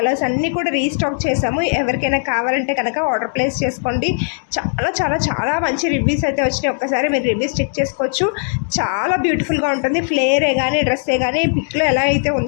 అన్నీ కూడా రీస్టాక్ చేసాము. ఎవరికైనా కావాలంటే కనుక ఆర్డర్ ప్లేస్ చేసుకోండి. చాలా చాలా చాలా మంచి రివ్యూస్ అయితే వచ్చినాయి. ఒక్కసారి మీరు రివ్యూస్ చెక్ చేసుకోవచ్చు. చాలా బ్యూటిఫుల్గా ఉంటుంది. ఫ్లేరే కానీ డ్రెస్సే కానీ పిక్లో ఎలా అయితే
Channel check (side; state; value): right; silent; digital silence